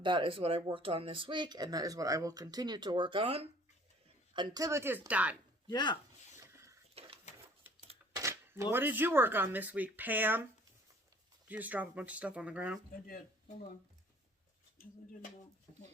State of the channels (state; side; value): normal; both; correlation 0.54